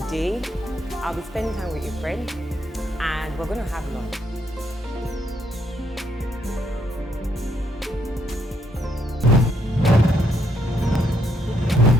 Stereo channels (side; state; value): both; normal; correlation 0.74